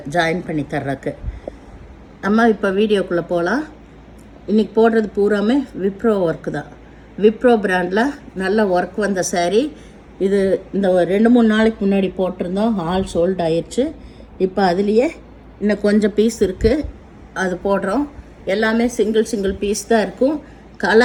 ஜாயின் பண்ணி தர்றதுக்கு. நம்ம இப்போ வீடியோக்குள்ளே போகலாம். இன்றைக்கி போடுறது பூராமே விப்ரோ ஒர்க்கு தான். விப்ரோ பிராண்டில் நல்ல ஒர்க் வந்த சாரீ இது. இந்த 2-3 நாளைக்கு முன்னாடி போட்டிருந்தோம், ஆல் சோல்ட் ஆயிடுச்சு. இப்போ அதுலேயே இன்னும் கொஞ்சம் பீஸ் இருக்குது, அது போடுறோம். எல்லாமே சிங்கிள் பீஸ் தான் இருக்கும்.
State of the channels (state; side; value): identical; both; correlation 1.00